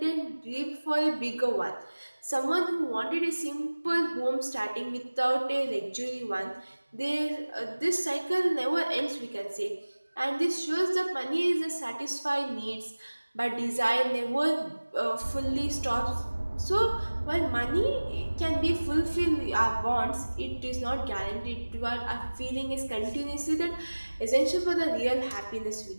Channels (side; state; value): both; inverted; correlation -1.00